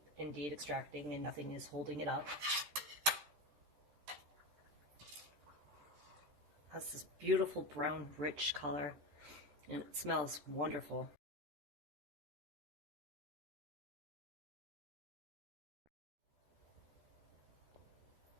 indeed extracting and nothing is holding it up. It has this beautiful brown, rich color, and it smells wonderful.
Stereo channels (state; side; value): late; left; 14 ms